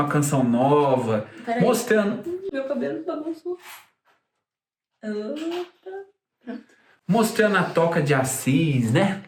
a Canção Nova, mostrando... Meu cabelo bagunçou. Mostrando a Toca de Assis, né?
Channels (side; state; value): both; identical; correlation 1.00